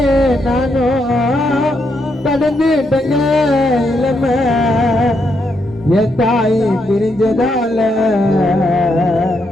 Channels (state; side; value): normal; both; correlation 0.79